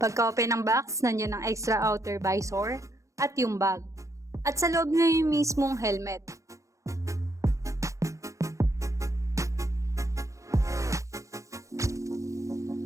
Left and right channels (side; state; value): left; late; 0.15 ms